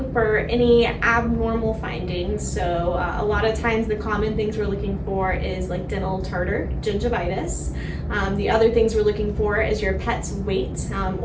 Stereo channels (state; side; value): identical; both; correlation 1.00